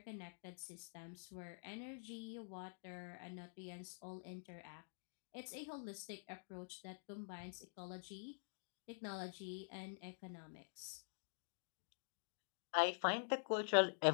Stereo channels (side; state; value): right; silent; digital silence